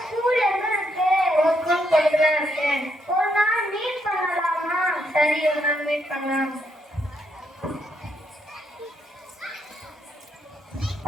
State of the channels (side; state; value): both; normal; correlation 0.76